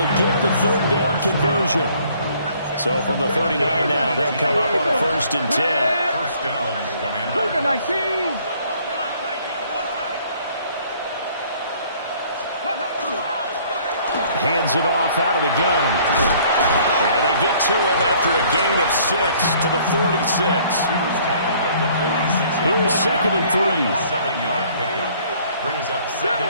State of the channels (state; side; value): inverted; both; correlation -0.59